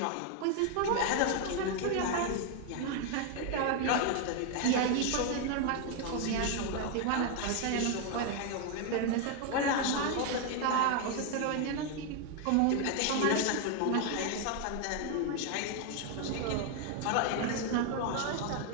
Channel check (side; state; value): both; different; correlation 0.01